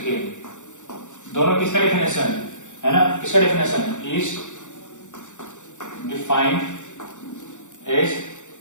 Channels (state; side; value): late; right; 0.85 ms